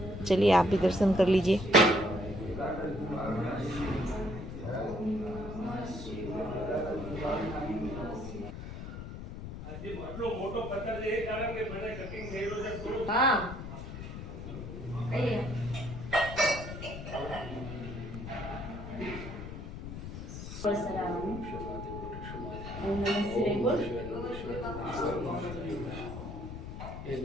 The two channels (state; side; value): noise; left; rumble, 8 dB below the sound